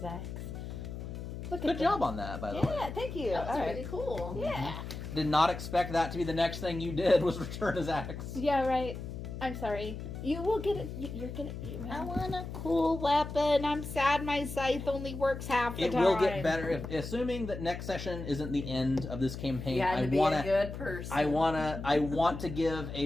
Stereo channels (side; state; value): left; noise; hum, 8 dB below the sound